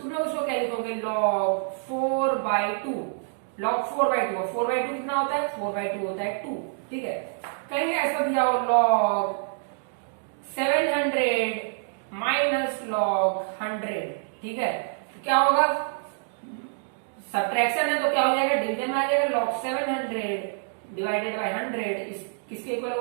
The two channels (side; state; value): left; silent; digital silence